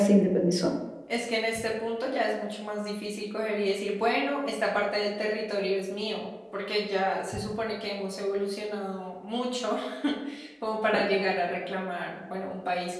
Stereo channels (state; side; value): identical; both; correlation 1.00